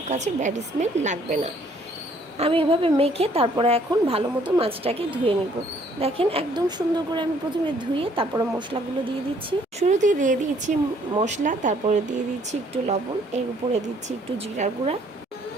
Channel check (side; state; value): both; normal; correlation 0.63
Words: কাছে ব্যাড স্মেল লাগবে না। আমি এভাবে মেখে তারপরে এখন ভালো মতো মাছটাকে ধুয়ে নিব। দেখেন একদম সুন্দর করে আমি প্রথমে ধুয়ে তারপরে মশলাগুলো দিয়ে দিচ্ছি। শুরুতেই দিয়ে দিচ্ছি মশলা, তারপরে দিয়ে দিচ্ছি একটু লবণ, এর উপরে দিচ্ছি একটু জিরার গুঁড়া,